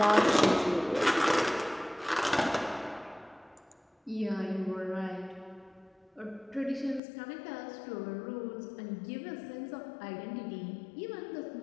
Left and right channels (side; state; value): right; drops out; at 7.0 s